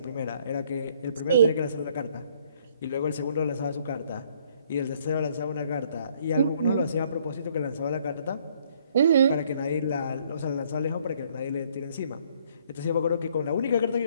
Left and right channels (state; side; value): inverted; both; correlation -0.64